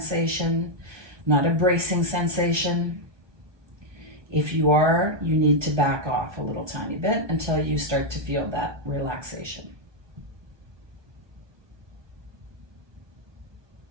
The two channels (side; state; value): left; late; 1.2 ms